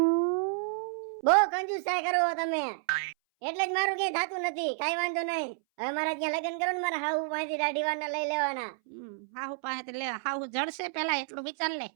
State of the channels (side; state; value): left; silent; 58 dB below the other